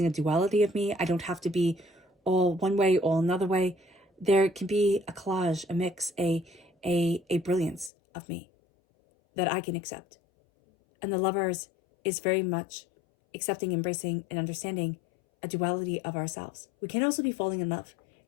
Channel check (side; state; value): right; drops out; at 7.9 s